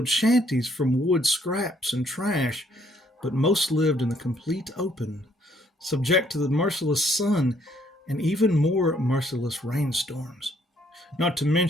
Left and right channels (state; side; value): normal; both; correlation 0.67